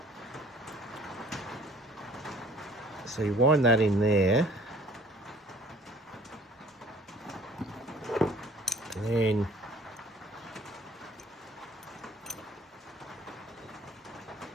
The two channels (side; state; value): both; normal; correlation 0.53